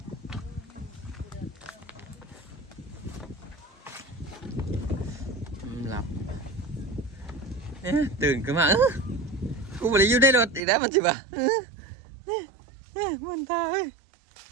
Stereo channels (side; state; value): left; drops out; at 10.6 s